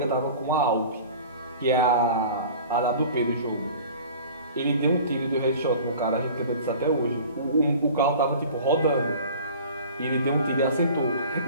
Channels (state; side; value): inverted; both; correlation -0.43